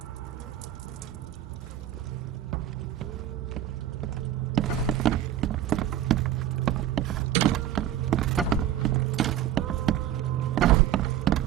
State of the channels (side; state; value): left; quieter; 11.4 dB